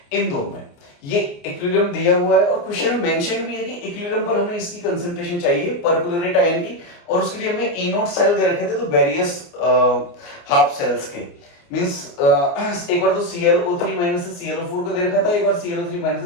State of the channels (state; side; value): late; right; 29 ms